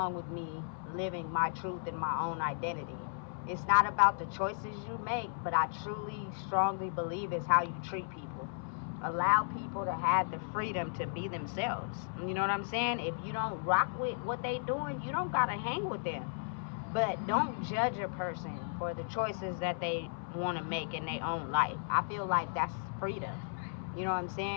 with me living my truth and my own identity? It's not about the choices you make, but I truly, strongly believe it's how you treat people. Allow people to have the freedom to be themselves. You know what I'm saying? If you don't rock with what they doing, you don't got to hang with them. But don't judge a person for the choices that they want to make in their own life. I feel like that's freedom. You know what I'm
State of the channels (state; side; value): silent; right; 54 dB below the other